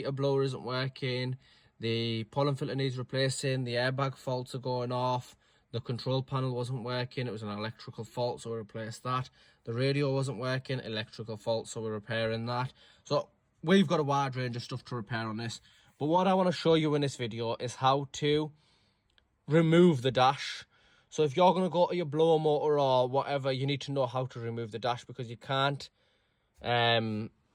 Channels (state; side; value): identical; both; correlation 1.00